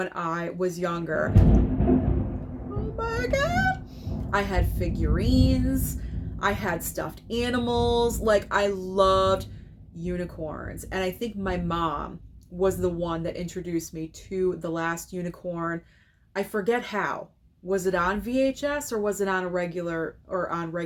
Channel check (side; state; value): both; identical; correlation 1.00